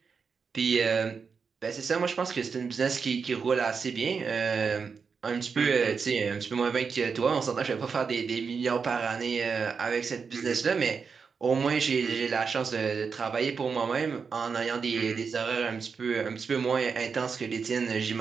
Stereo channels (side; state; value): left; quieter; 5.6 dB